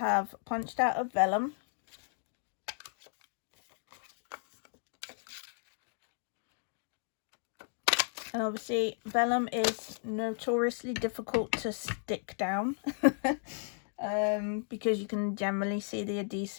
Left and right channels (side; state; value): right; silent; 55 dB below the other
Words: punched out of vellum. And obviously vellum is notoriously difficult to stick down because you can generally see the